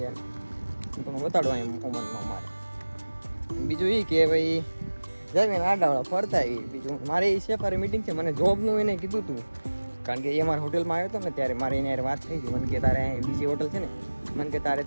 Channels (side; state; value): both; inverted; correlation -1.00